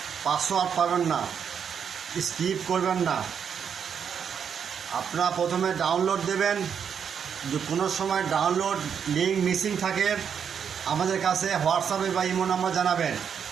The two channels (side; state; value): left; quieter; 7.5 dB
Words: পাসওয়ার্ড পাবেন না, স্কিপ করবেন না। আপনারা প্রথমে ডাউনলোড দেবেন, যদি কোনো সময় ডাউনলোড লিঙ্ক মিসিং থাকে আমাদের কাছে হোয়াটসঅ্যাপে বা ইমো নাম্বার জানাবেন।